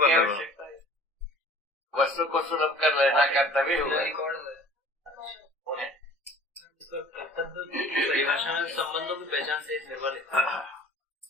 आवश्यकता है। वस्तु को सुलभ कर लेना कर्तव्य हुआ। परिभाषा में संबंधों की पहचान से निर्भर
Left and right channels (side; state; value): both; normal; correlation 0.47